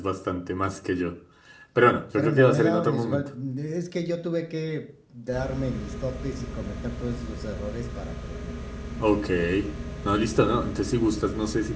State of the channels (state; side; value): identical; both; correlation 1.00